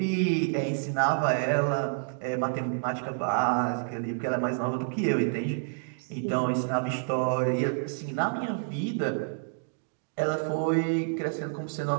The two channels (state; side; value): silent; left; digital silence